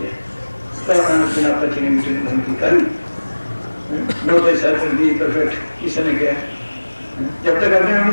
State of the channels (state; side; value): inverted; both; correlation -1.00